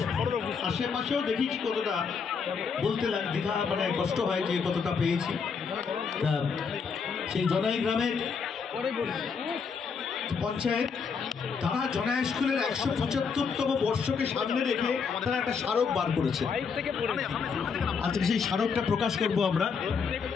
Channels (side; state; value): right; quieter; 5.8 dB